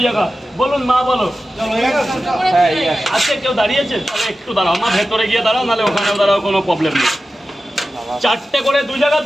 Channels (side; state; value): both; normal; correlation 0.94